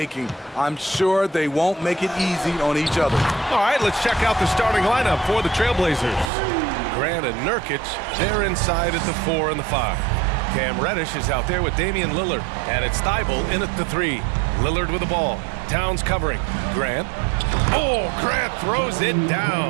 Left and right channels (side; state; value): left; drops out; at 6.2 s